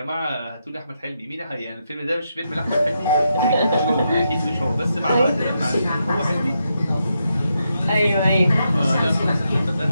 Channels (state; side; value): inverted; both; correlation -0.83